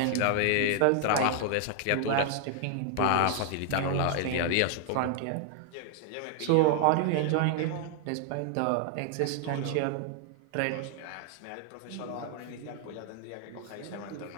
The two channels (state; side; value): different; both; correlation 0.00